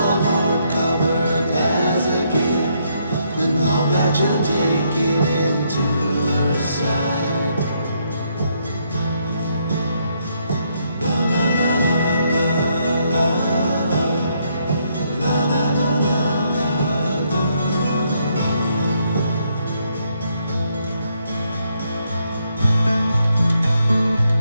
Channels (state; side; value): inverted; both; correlation -0.74